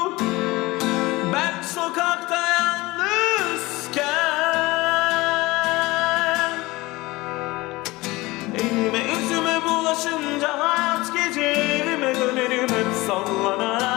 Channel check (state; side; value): quieter; right; 21.0 dB